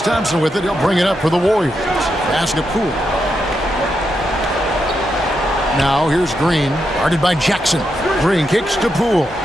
with it. He'll bring it up for the Warriors. Pass to Poole. Now here's Green. Guarded by Jackson. Green kicks to Poole.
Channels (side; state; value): both; normal; correlation 0.84